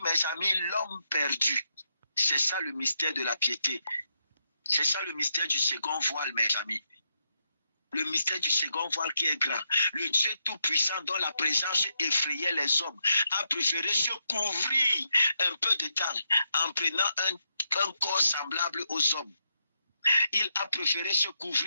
mes amis, l'homme perdu. C'est ça le mystère de la piété. C'est ça le mystère du second voile, mes amis. Le mystère du second voile qui est grand. Le Dieu tout-puissant dont la présence effrayait les hommes a préféré se couvrir un peu de temps en prenant un corps semblable aux hommes. Il a préféré se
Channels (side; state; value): both; inverted; correlation -0.80